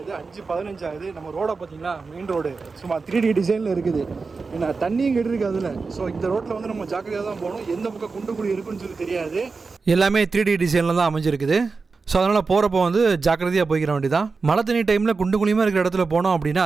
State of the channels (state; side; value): quieter; left; 4.4 dB